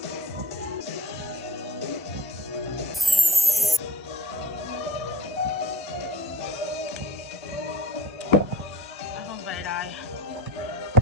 My phone's about to die.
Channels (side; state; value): both; normal; correlation 0.41